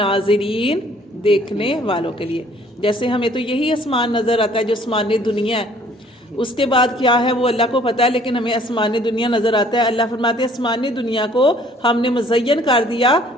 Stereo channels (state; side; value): normal; both; correlation 0.58